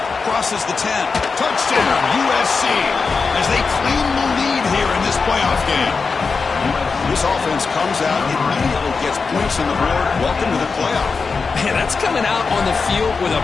Crosses the 10. Touchdown, USC, as they claim the lead here in this playoff game. This offense comes out, immediately gets points on the board. Welcome to the playoff. Man, that's coming out on the field with a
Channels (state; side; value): quieter; right; 4.8 dB